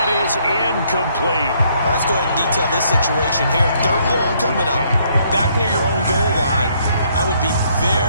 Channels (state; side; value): inverted; both; correlation -0.68